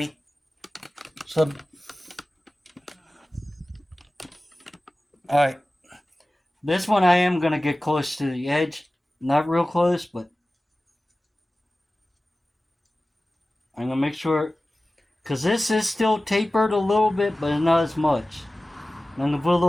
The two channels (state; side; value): normal; both; correlation 0.97